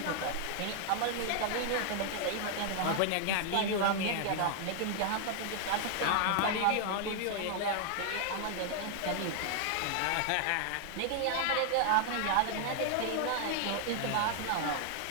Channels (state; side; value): different; both; correlation 0.00